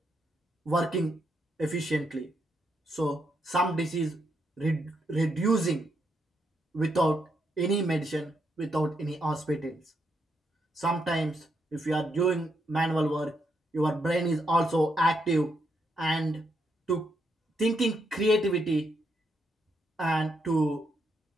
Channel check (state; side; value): normal; both; correlation 0.79